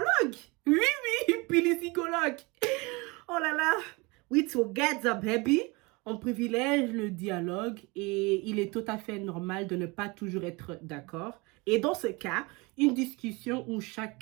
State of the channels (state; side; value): quieter; left; 26.1 dB